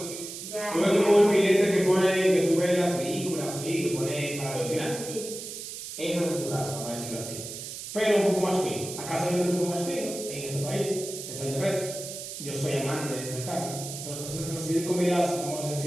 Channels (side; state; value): right; noise; hiss, 9 dB below the sound